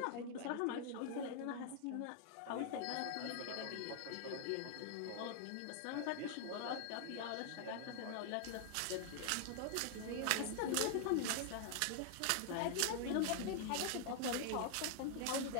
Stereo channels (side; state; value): both; different; correlation 0.00